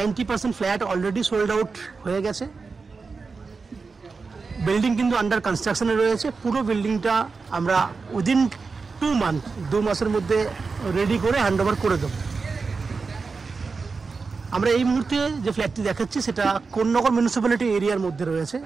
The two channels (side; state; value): left; quieter; 4.6 dB